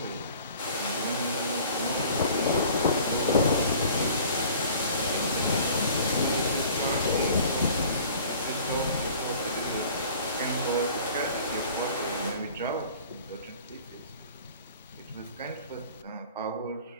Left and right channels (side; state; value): both; inverted; correlation -0.48